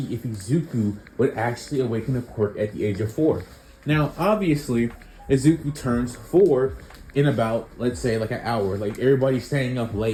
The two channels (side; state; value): both; identical; correlation 1.00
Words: if Izuku would actually awaken a quirk at the age of 4. Now, obviously, Izuku turns 4 in about, let's say, like an hour. Like, everybody's staying up